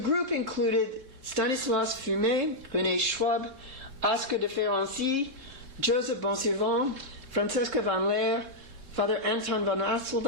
included Stanislas Fumet, René Schwab, Oscar de Ferenczi, Joseph Bonsuivant, Francesca van Leer, Father Anton van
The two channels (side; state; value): left; late; 3.6 ms